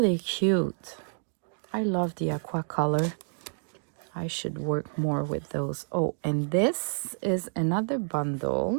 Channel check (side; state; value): left; silent; digital silence